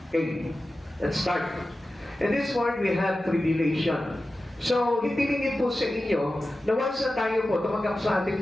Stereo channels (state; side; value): normal; both; correlation 0.94